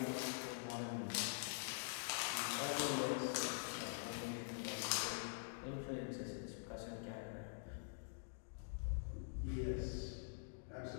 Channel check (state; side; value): silent; right; digital silence